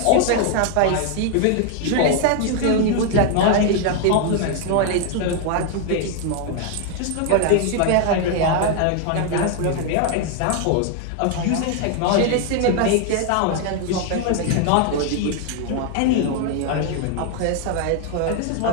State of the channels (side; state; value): both; different; correlation 0.00